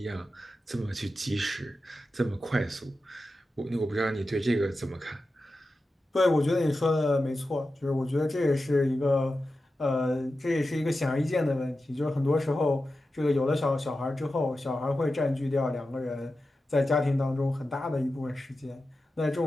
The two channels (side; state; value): both; normal; correlation 0.92